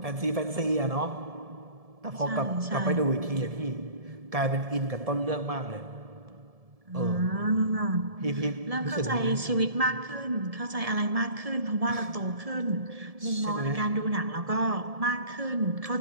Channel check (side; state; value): left; late; 1.7 ms